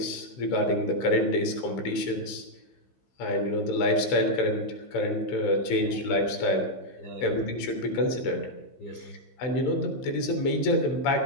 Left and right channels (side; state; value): right; late; 15 ms